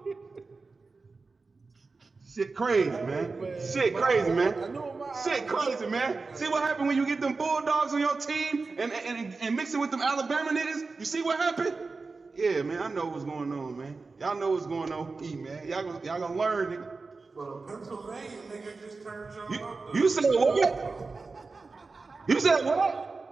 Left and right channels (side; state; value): left; quieter; 4.0 dB